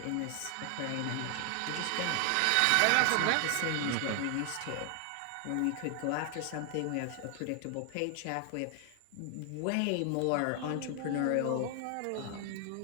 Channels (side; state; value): both; different; correlation 0.00